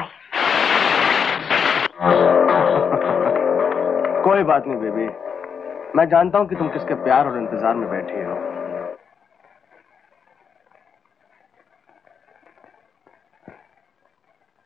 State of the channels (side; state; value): right; quieter; 6.7 dB